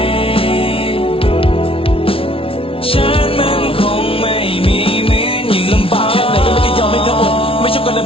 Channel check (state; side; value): late; right; 0.26 ms